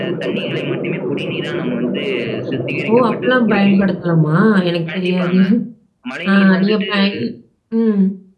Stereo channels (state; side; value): identical; both; correlation 1.00